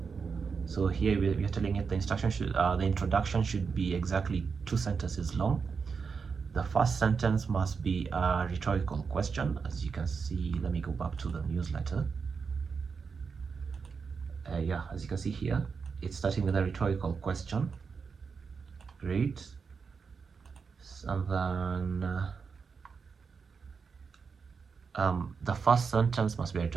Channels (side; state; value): left; quieter; 5.5 dB